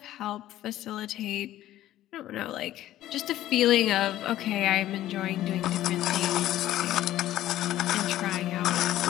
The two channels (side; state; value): right; quieter; 13.8 dB